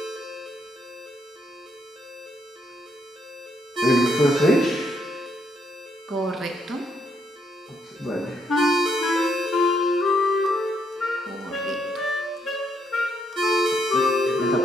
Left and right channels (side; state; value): both; normal; correlation 0.75